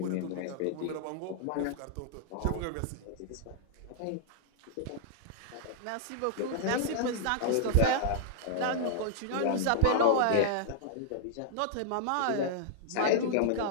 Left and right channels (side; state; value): both; different; correlation -0.01